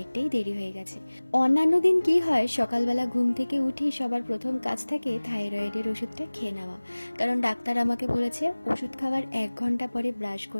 দেরি হয়ে গেছে। অন্যান্য দিন কি হয়, সকালবেলা ঘুম থেকে উঠে সবার প্রথম কাজ থাকে থাইরয়েডের ওষুধটা খেয়ে নেওয়া, কারণ ডাক্তার আমাকে বলেছে ওষুধ খাওয়ার 1 ঘন্টা পরে ব্রাশ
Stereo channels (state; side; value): inverted; both; correlation -1.00